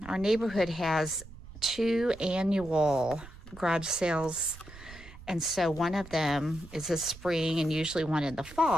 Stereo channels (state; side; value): noise; right; rumble, 17 dB below the sound